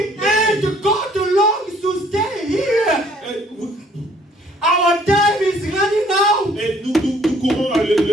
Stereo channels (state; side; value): normal; both; correlation 0.60